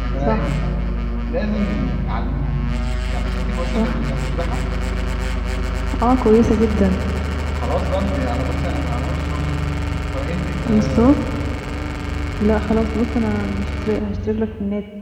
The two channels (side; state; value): both; identical; correlation 1.00